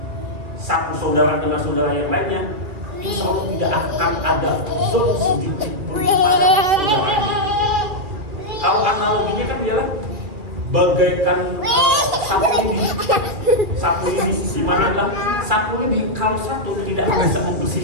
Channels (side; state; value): left; late; 2.4 ms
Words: satu saudara dengan saudara yang lainnya, insya Allah tidak akan ada zon sedikit pun pada saudaranya. Kalau analoginya kan ialah bagaikan sapu lidi, di mana adalah sapu lidi kalau satu tidak bisa